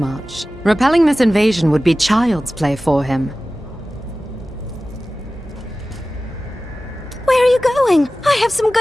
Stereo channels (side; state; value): both; normal; correlation 0.96